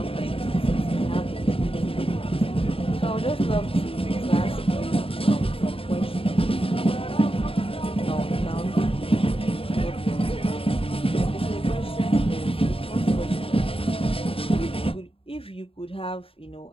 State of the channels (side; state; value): right; late; 0.27 ms